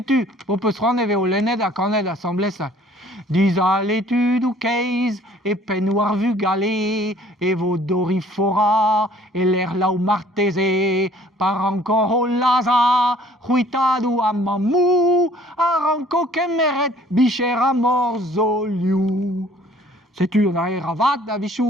on peut se rendre au Lened à Cornell, l'Assemblée, ça. Dis à l'étude ou case, et peignoir vu galer, et vos dorifora, et l'air là où martésé, par encore au laza, ruitado à mamou, aranco kemeret, bicher à morzoliu. Sais-tu, on a un ravat, la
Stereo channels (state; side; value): normal; both; correlation 0.56